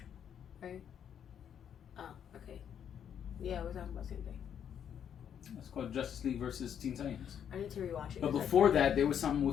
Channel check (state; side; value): quieter; right; 8.7 dB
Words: right? Oh, okay. Yeah, we're talking about the same thing. It's called Justice League versus Teen Titans. I need to rewatch it. But before that, there was something